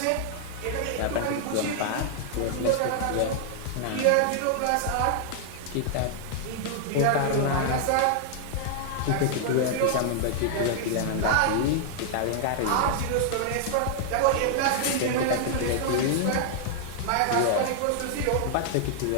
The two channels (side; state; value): both; different; correlation -0.01